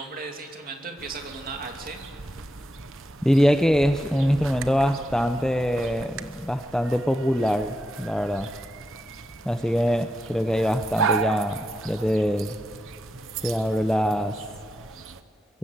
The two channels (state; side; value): normal; both; correlation 0.85